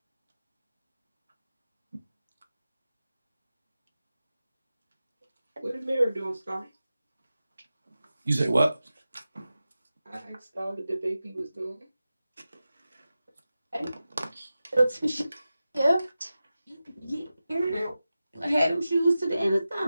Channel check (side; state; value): both; inverted; correlation -0.94